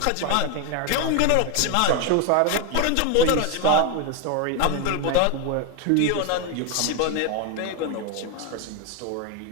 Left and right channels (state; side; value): different; both; correlation 0.01